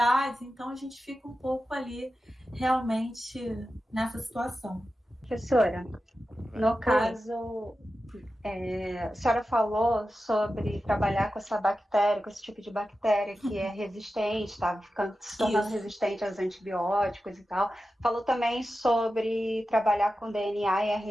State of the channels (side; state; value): both; normal; correlation 0.92